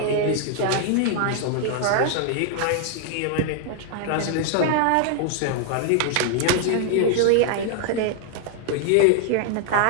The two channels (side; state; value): both; different; correlation 0.00